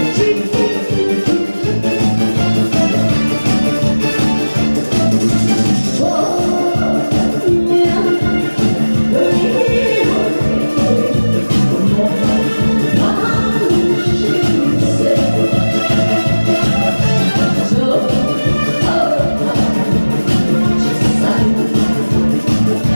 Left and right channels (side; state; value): both; inverted; correlation -1.00